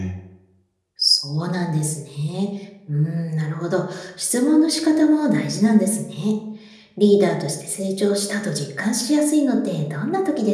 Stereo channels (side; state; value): both; identical; correlation 1.00